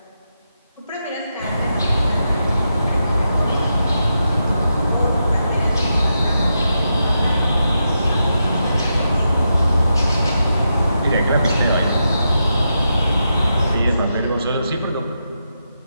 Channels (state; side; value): inverted; both; correlation -0.85